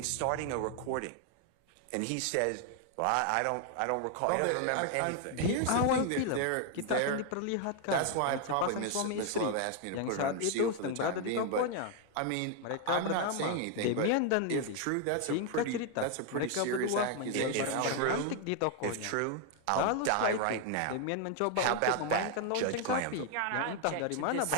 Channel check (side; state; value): both; different; correlation 0.00